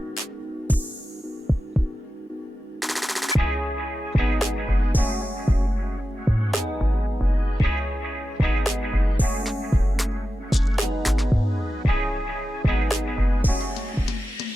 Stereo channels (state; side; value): normal; both; correlation 0.92